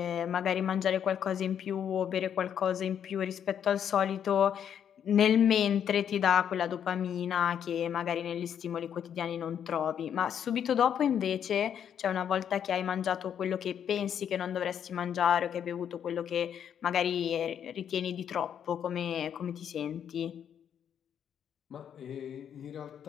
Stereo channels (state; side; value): quieter; right; 8.8 dB